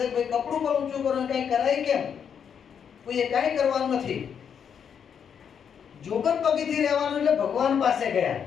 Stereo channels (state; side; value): quieter; right; 7.6 dB